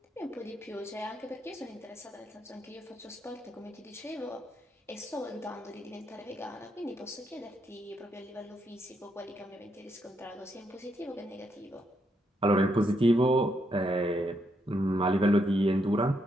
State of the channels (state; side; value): normal; both; correlation 0.78